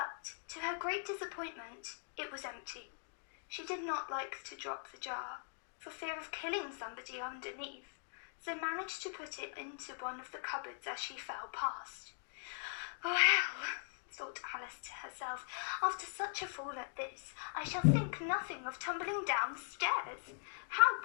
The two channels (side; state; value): right; silent; digital silence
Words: to her great disappointment, it was empty. She did not like to drop the jar, for fear of killing somebody underneath, so managed to put it into one of the cupboards as she fell past. Well, thought Alice to herself, after such a fall at this, I shall think nothing of tumbling downstairs. How